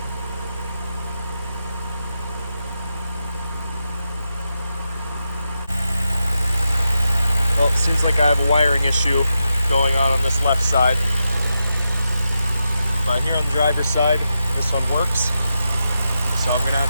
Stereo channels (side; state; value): both; inverted; correlation -0.87